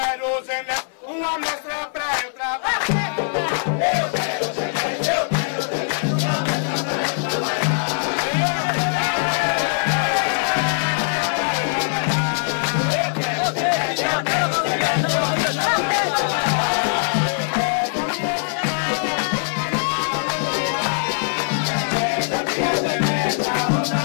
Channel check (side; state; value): right; silent; digital silence